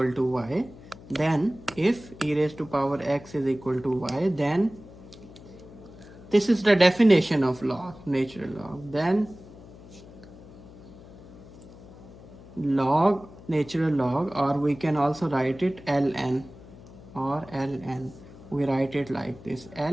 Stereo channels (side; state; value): left; noise; hum, 19 dB below the sound